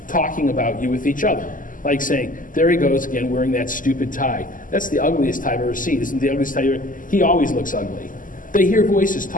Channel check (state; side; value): late; right; 0.39 ms